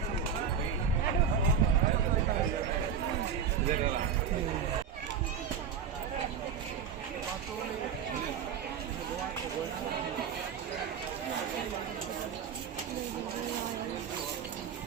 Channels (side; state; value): left; quieter; 7.2 dB